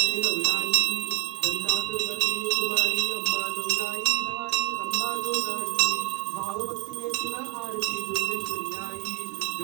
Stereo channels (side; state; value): left; quieter; 20.0 dB